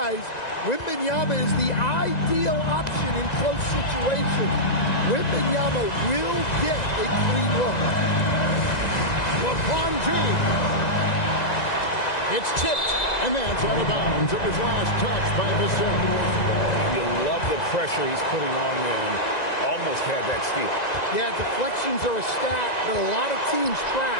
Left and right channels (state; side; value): late; right; 1.9 ms